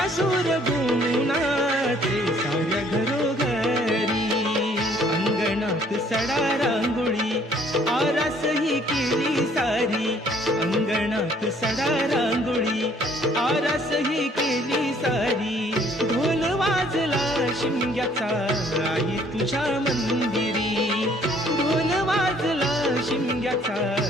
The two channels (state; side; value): normal; both; correlation 0.61